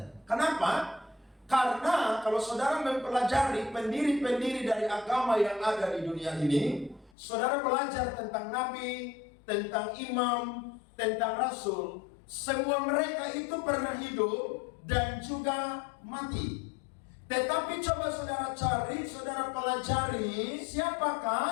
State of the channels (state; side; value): drops out; right; at 7.1 s